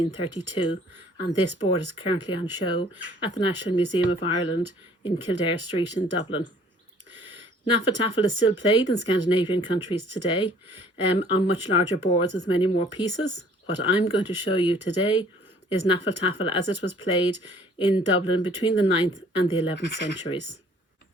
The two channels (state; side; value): normal; both; correlation 0.56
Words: and this board is currently on show at the National Museum of Ireland in Kildare Street in Dublin. Hnefatafl is still played in Scandinavian countries today on much larger boards with many more pieces. What I'm going to show you today is Hnefatafl as it was played in Dublin between the 9th and the 11th centuries.